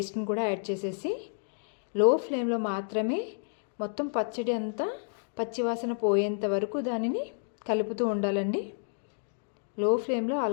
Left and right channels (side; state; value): right; silent; digital silence